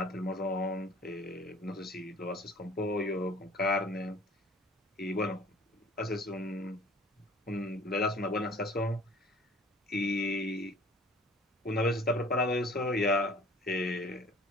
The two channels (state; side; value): normal; both; correlation 0.50